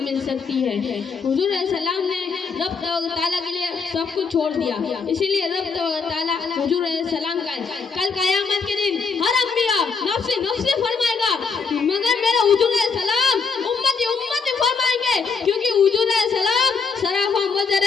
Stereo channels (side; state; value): right; quieter; 5.2 dB